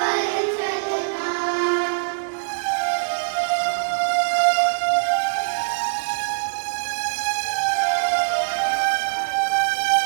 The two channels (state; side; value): silent; left; digital silence